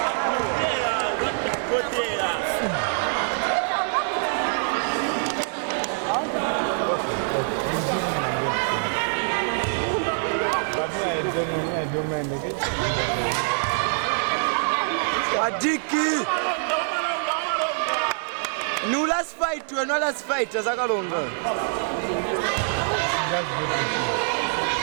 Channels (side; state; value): left; silent; digital silence